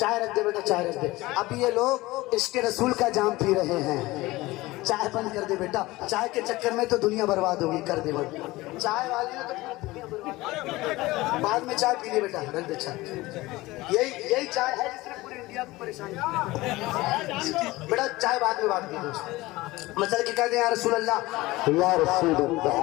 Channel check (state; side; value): quieter; right; 19.6 dB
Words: رکھ دے, بیٹا چائے رکھ دے. ابھی یہ لوگ عشق رسول کا جام پی رہے ہیں, چائے بند کر دے بیٹا. چائے کے چکر میں تو دنیا برباد ہوگی, کر دے بند. چائے والے نے تو دنیا برباد, بعد میں چائے پی لے بیٹا, رکھ دے چائے. یہی چائے ہے جس نے پوری انڈیا کو پریشان کیا. بیٹا چائے بعد میں بات کی, مثلا کہ کہہ دیں یا رسول اللہ, یا رسول